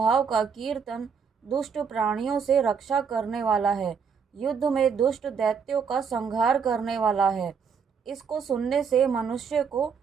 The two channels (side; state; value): left; quieter; 6.3 dB